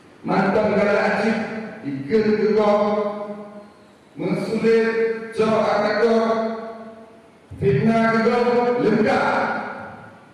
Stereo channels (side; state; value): both; identical; correlation 1.00